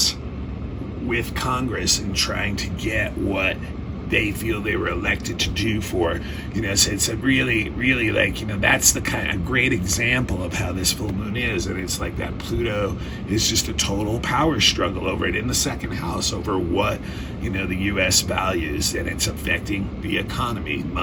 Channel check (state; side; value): identical; both; correlation 1.00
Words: with Congress and trying to get what they feel they were elected to do for, so it's a really, really that's the kind of great example of how this full moon is. And it's like that Pluto is just a total power struggle over it in the second house over what, the U.S. values, and it's affecting the economy,